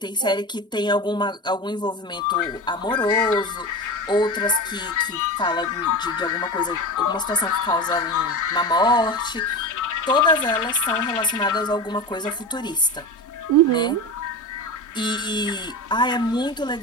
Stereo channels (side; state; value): both; normal; correlation 0.25